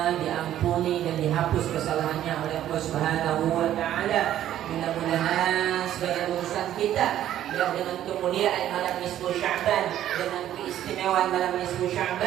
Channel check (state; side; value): quieter; left; 11.9 dB